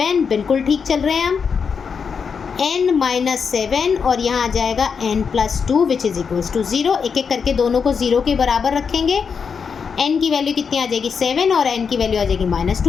बिल्कुल ठीक चल रहे हैं हम। n माइनस 7 और यहाँ आ जाएगा n plus 2 which is equals to 0। एक एक करके दोनों को 0 के बराबर रखेंगे। n की वैल्यू कितनी आ जाएगी 7 और n की वैल्यू आ जाएगी माइनस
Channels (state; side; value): quieter; right; 6.1 dB